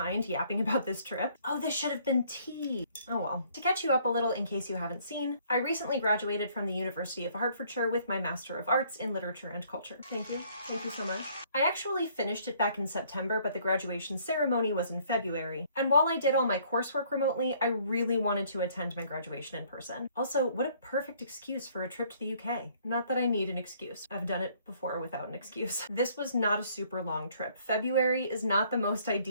yapping about this trip. Oh, this should have been tea. Oh well. To catch you up a little in case you haven't seen, I recently graduated from the University of Hertfordshire with my Master of Arts in Literature and Culture. Thank you. Thank you so much. I actually finished it back in September, but the graduation ceremony was in February. And while I did all my coursework remotely, I really wanted to attend my graduation in person. Also, what a perfect excuse for a trip to the UK. Not that I need an excuse. I've done it before without an excuse. This was not a super long trip. February is not the most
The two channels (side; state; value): both; inverted; correlation -0.62